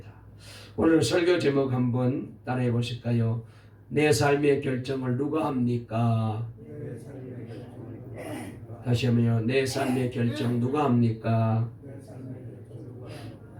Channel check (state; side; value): identical; both; correlation 1.00